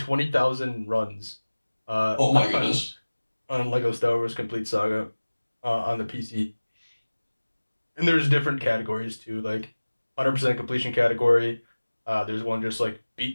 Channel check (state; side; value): inverted; both; correlation -1.00